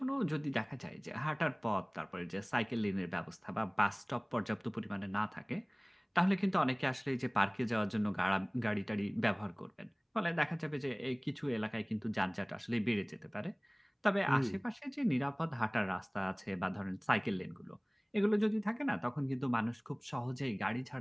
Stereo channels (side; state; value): both; identical; correlation 1.00